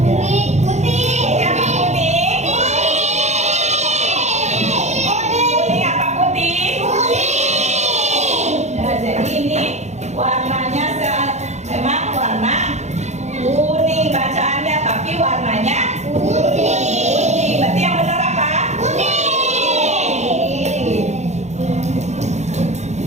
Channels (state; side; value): late; left; 0.33 ms